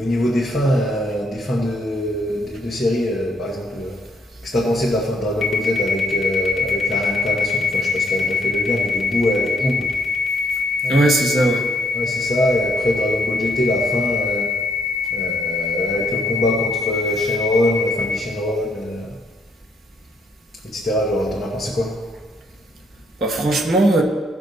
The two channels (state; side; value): normal; both; correlation 0.71